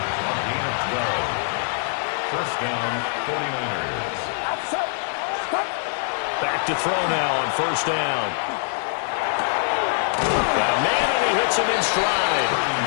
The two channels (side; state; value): right; silent; digital silence